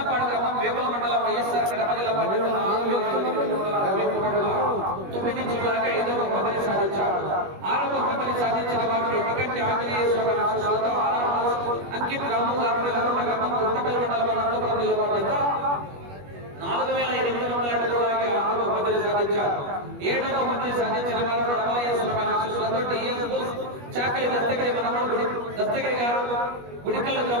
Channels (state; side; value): late; left; 21 ms